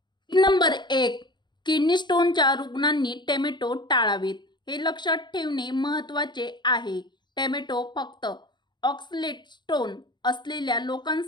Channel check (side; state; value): right; late; 0.22 ms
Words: नंबर 1. किडनी स्टोनच्या रुग्णांनी टोमॅटो टाळावेत. हे लक्षात ठेवणे महत्त्वाचे आहे. टोमॅटो फक्त ऑक्सलेट स्टोन असलेल्या